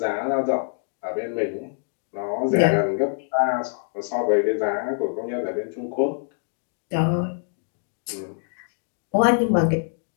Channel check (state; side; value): silent; right; digital silence